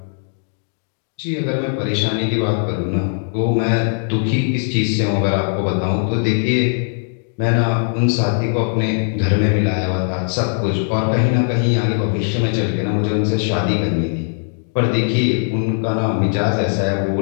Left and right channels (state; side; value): silent; right; digital silence